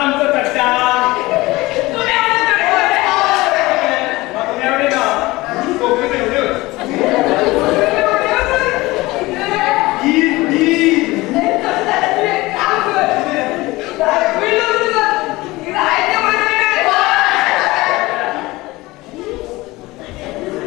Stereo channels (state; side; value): quieter; right; 20.4 dB